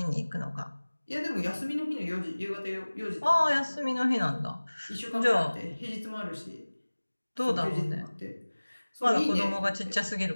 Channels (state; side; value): inverted; both; correlation -1.00